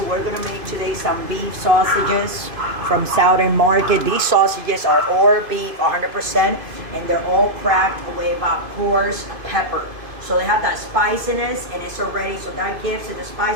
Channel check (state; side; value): late; left; 2.5 ms